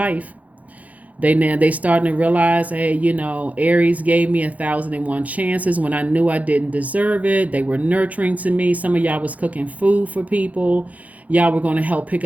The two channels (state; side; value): late; left; 0.073 ms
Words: They starting to realize, hey, Aries gave me 1,001 chances when I knew I didn't deserve it. They were nurturing to me. Some of y'all was cooking food for people. Y'all were going to help pick